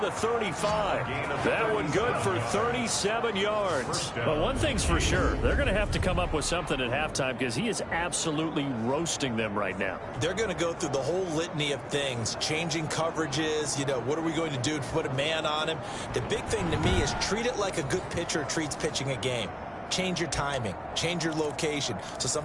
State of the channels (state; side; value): identical; both; correlation 1.00